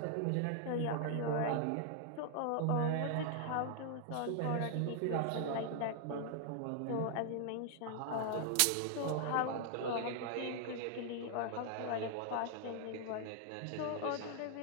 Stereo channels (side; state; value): both; different; correlation 0.00